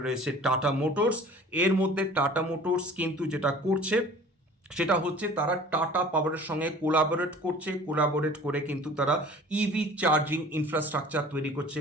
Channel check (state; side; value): normal; both; correlation 0.46